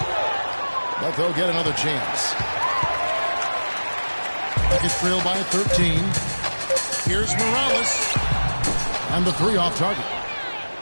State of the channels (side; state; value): both; inverted; correlation -1.00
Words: But they'll get another chance. Rockets trail by 13. Here's Morales. And the 3 off target.